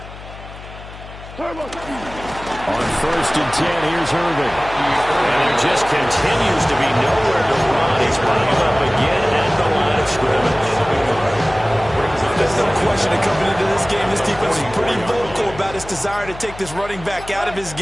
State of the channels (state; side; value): noise; left; hum, 15 dB below the sound